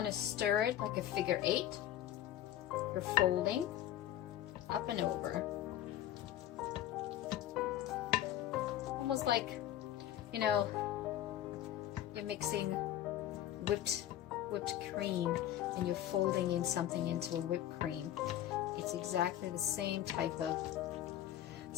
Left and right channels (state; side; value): quieter; right; 12.3 dB